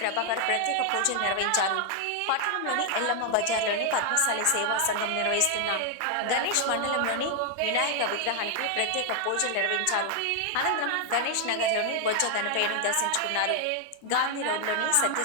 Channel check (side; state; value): both; different; correlation 0.00